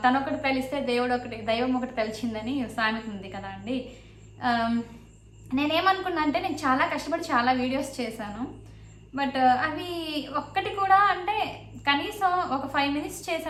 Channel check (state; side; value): identical; both; correlation 1.00